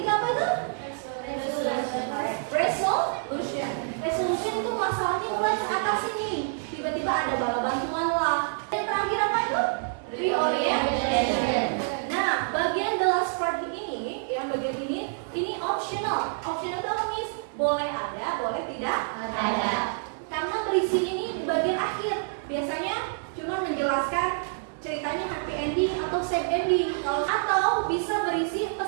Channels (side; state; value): left; silent; 60 dB below the other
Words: tidak ada. Karena berisi ini di bagian akhir. Biasanya cuma menjelaskan ceritanya happy ending atau sad ending. Atau bisa berisi